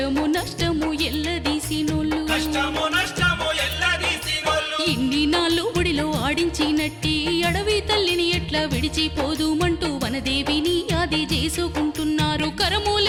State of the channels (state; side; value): identical; both; correlation 1.00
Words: నష్టము ఎల్లదీసినోళ్ళు కష్టము నష్టము ఎల్లదీసినోళ్ళు ఇన్ని నాళ్ళు ఒడిలో ఆడించినట్టి అడవి తల్లిని ఎట్లా విడిచిపోదుమంటూ వనదేవిని ఆది చేసుకుంటున్నారు